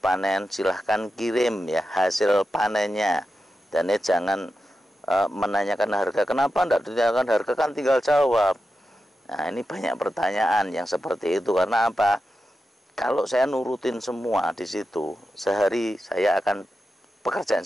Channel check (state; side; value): normal; both; correlation 0.90